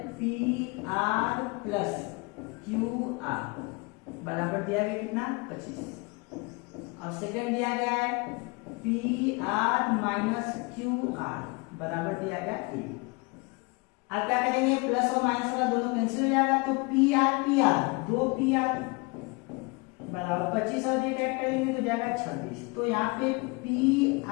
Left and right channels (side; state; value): right; quieter; 28.6 dB